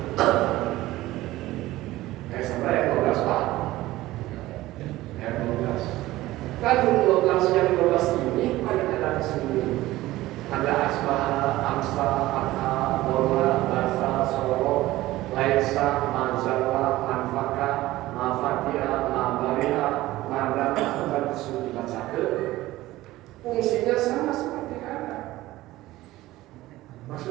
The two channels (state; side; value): quieter; left; 17.0 dB